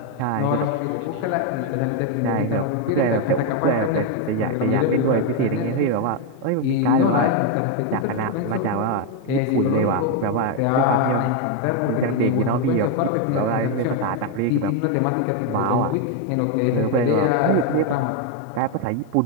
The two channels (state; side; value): different; both; correlation 0.01